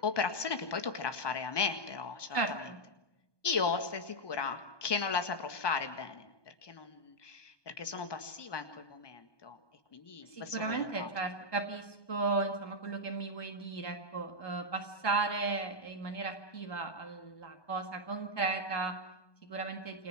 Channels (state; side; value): late; right; 1.2 ms